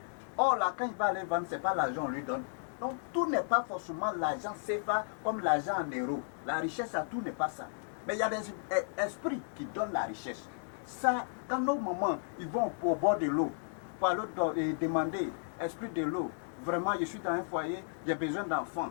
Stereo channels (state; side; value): silent; right; digital silence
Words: Or là, quand il va aller vendre, ce n'est pas l'argent qu'on lui donne. Donc tout n'est pas forcément l'argent CFA comme l'argent en euros. La richesse, à tout n'est pas ça. Mais il y a des esprits qui donnent la richesse. Ça, quand nos mamans ils vont au bord de l'eau pour aller demander, esprit de l'eau, vraiment je suis dans un foyer, j'ai besoin